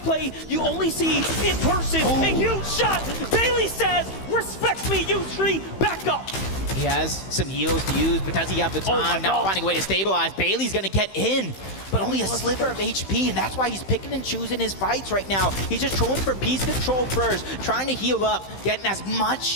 play you only see in person. A huge shot. Bailey says, respect me, Yusri, back up. He has some heals to use, but does he have the time? Not finding a way to stabilize. Bailey's gonna get in, but only a sliver of HP, and that's why he's picking and choosing his fights right now. He's just trolling for piece control first, trying to heal up, getting as much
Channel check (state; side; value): late; right; 15 ms